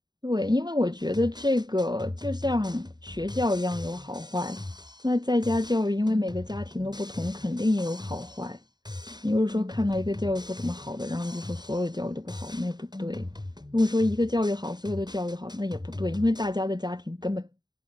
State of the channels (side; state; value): left; late; 0.20 ms